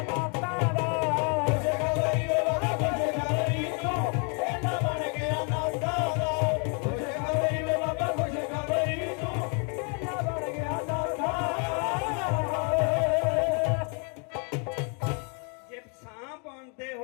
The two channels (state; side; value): quieter; right; 38.2 dB